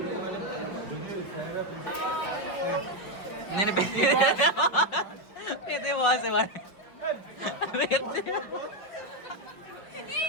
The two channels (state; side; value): late; right; 5.5 ms